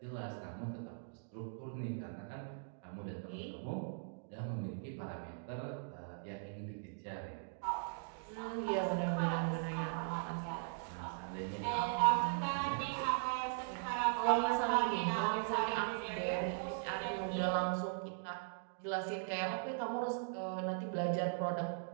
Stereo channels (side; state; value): left; silent; digital silence